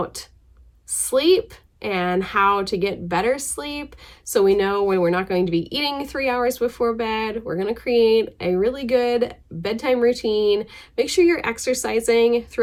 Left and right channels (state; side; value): identical; both; correlation 1.00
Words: sleep and how to get better sleep, so we know when we're not going to be eating 3 hours before bed. We're going to create a really good bedtime routine. Make sure you're exercising